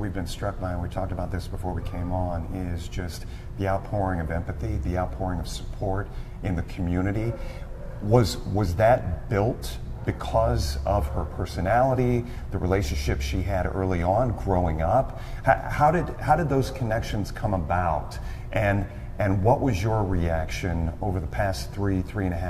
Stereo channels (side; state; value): both; identical; correlation 1.00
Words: been struck by, and we talked about this before we came on, is just the outpouring of empathy, the outpouring of support in the community. Was that built because of her personality, the relationship she had early on growing up? How did those connections come about? And what was your reaction over the past